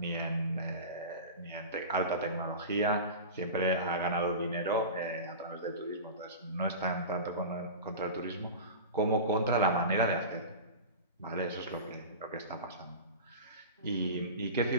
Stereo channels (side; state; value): both; inverted; correlation -0.30